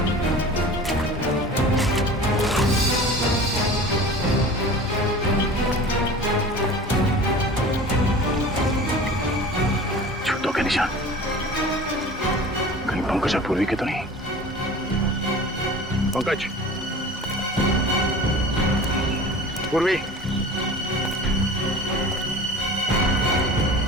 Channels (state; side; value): normal; both; correlation 0.39